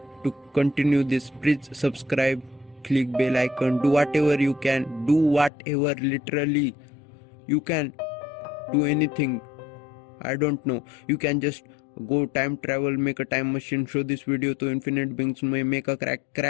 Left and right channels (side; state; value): right; drops out; at 5.5 s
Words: to continue this. Please subscribe, click bell icon, do whatever you can, do whatever, literally you can do anything. I don't know, you can just go time travel, make a time machine, show this video to infinite beings, make a